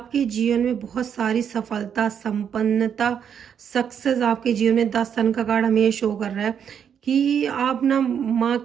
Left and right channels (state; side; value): quieter; left; 8.1 dB